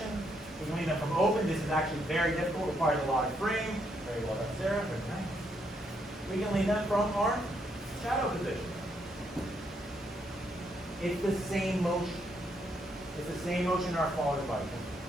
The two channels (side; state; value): both; normal; correlation 0.75